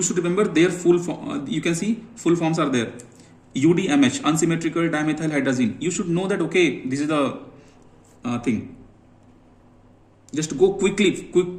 should remember their full form. You can see full forms are there. UDMH, unsymmetrical dimethyl hydrazine. You should know that, okay, this is the thing. Just go quickly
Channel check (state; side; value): identical; both; correlation 1.00